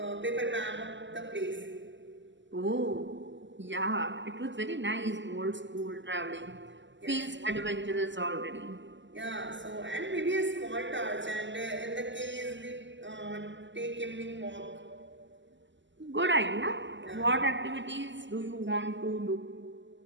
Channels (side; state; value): left; late; 0.54 ms